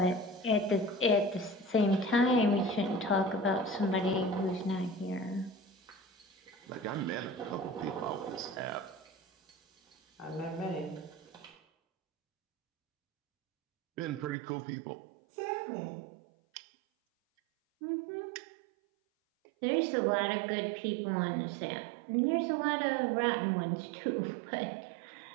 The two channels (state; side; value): drops out; left; at 14.4 s